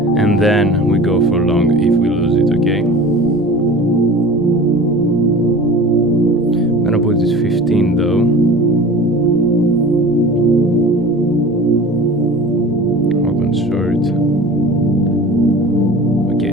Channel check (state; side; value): noise; left; rumble, 28 dB below the sound